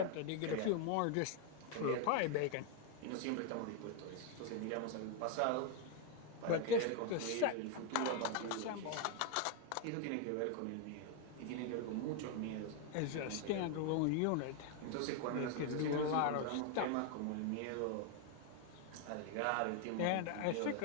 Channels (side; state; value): both; different; correlation 0.01